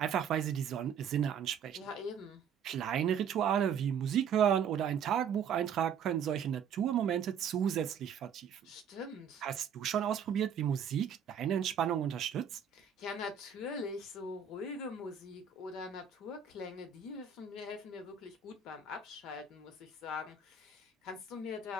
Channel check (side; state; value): left; quieter; 7.2 dB